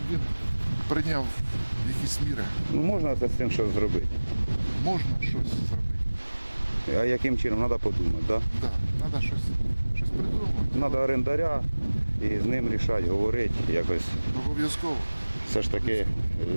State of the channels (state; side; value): inverted; both; correlation -1.00